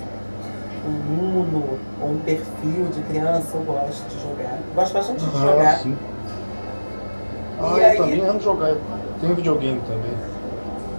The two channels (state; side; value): inverted; both; correlation -1.00